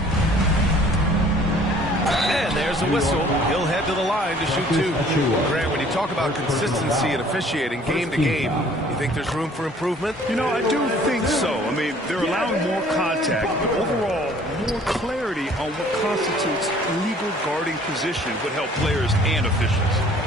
And there's a whistle. He'll head to the line to shoot 2. Grant, when you talk about consistency and officiating game to game, you think there's room for improvement? You know, I do think so. I mean, they're allowing more contact, but overall, more clarity on what constitutes legal guarding position would help players and officials.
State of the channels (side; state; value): both; normal; correlation 0.55